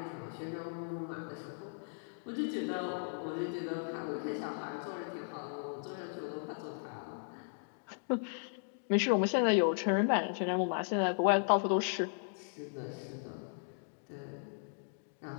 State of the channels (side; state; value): right; silent; digital silence